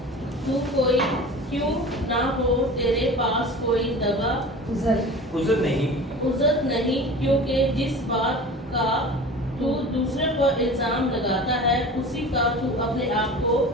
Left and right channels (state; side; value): normal; both; correlation 0.37